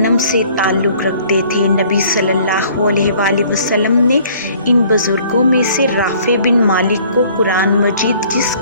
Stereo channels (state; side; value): inverted; both; correlation -0.56